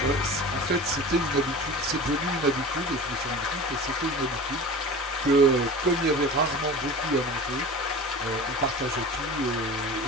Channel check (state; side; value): normal; both; correlation 0.35